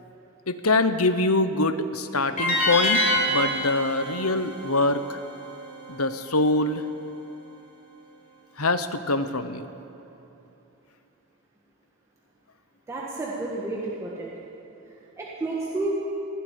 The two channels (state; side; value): normal; both; correlation -0.11